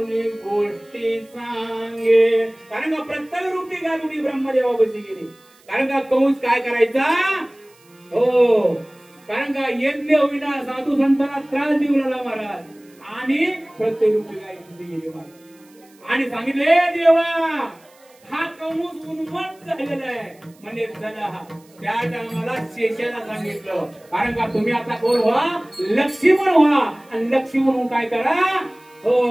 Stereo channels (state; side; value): noise; right; hiss, 30 dB below the sound